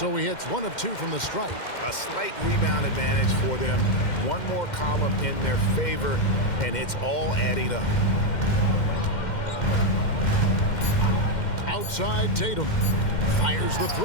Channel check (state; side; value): late; right; 2.1 ms